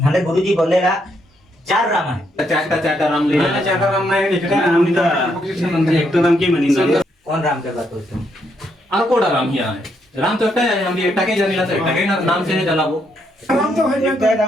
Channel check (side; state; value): both; normal; correlation 0.76